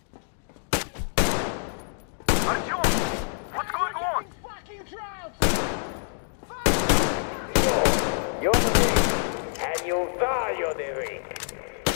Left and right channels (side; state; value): right; silent; digital silence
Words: Artyom, what's going on? Fucking drought! You're weak, and you value the weak.